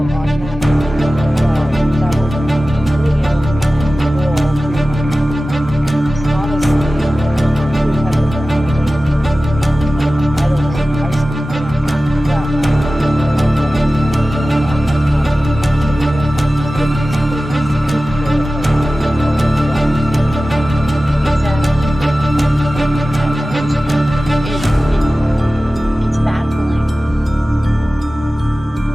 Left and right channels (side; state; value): both; normal; correlation 0.96